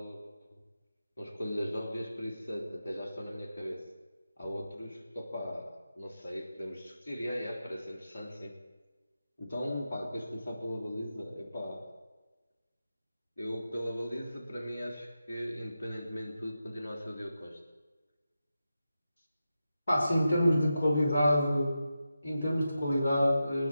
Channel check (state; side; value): inverted; both; correlation -0.90